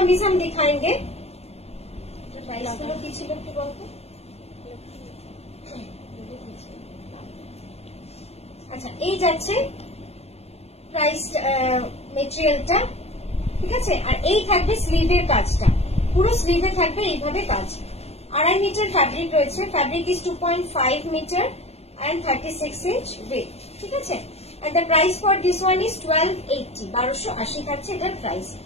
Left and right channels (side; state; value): right; late; 0.30 ms